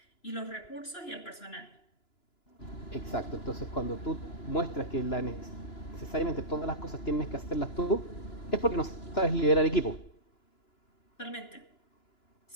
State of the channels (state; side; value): late; right; 2.9 ms